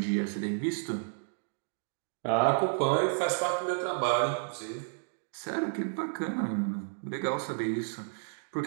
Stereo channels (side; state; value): left; silent; digital silence